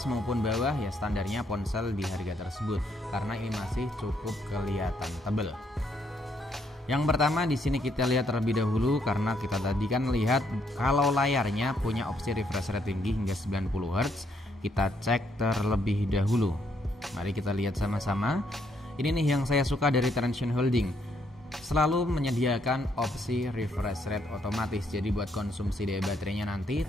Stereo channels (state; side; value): normal; both; correlation 0.72